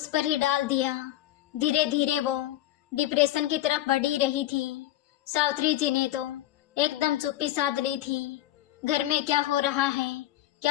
पर ही डाल दिया। धीरे धीरे वो डिप्रेशन की तरफ बढ़ ही रही थी। सावित्री जी ने तो एकदम चुप्पी साध ली थी। घर में क्या हो रहा है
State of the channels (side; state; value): right; quieter; 14.3 dB